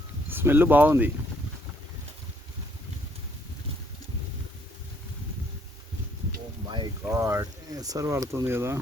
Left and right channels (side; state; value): both; normal; correlation 0.67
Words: స్మెల్ బాగుంది. ఓ మై గాడ్, ఎసరు పడుతుంది కదా.